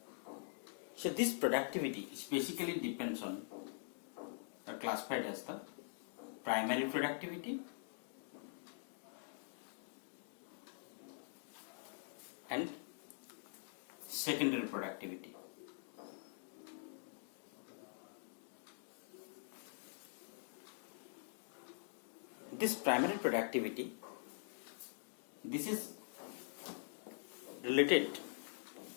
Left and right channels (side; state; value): right; silent; digital silence